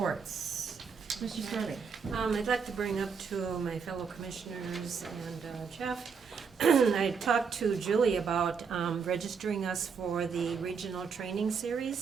Mr. Sterling? I'd like to bring up to my fellow commissioners and Jeff, I talked to Julie about registering us for the regional training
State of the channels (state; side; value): quieter; left; 5.9 dB